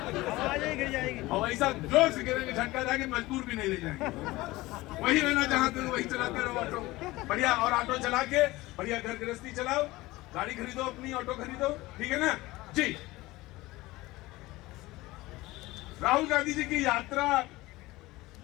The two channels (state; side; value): quieter; right; 19.4 dB